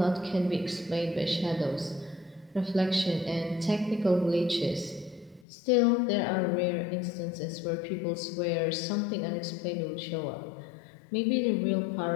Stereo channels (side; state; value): right; drops out; at 5.5 s